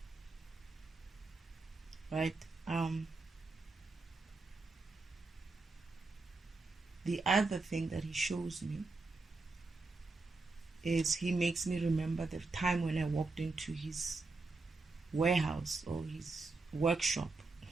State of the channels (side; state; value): left; quieter; 3.6 dB